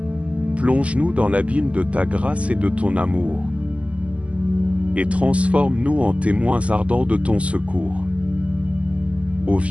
Plonge-nous dans l'abîme de ta grâce et de ton amour. Et transforme-nous en témoins ardents de ton secours. Ô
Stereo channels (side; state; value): left; late; 0.064 ms